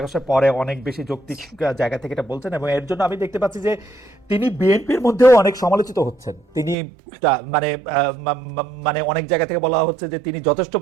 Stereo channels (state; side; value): drops out; left; at 6.8 s